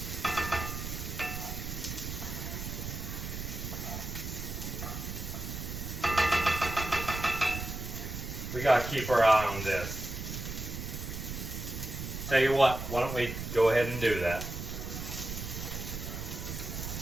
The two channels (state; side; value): noise; right; rumble, 6 dB below the sound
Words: We gotta keep our eye on this. Tell you what, why don't we go ahead and do that?